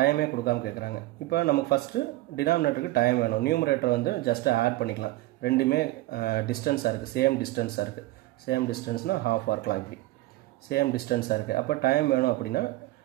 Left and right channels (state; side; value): quieter; left; 17.9 dB